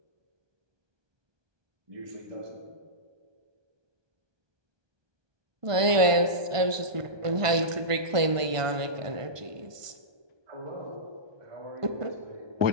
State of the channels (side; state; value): left; late; 1.5 ms